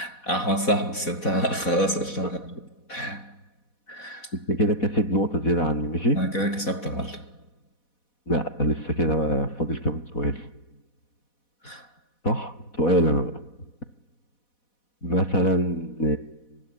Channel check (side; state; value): right; late; 4.1 ms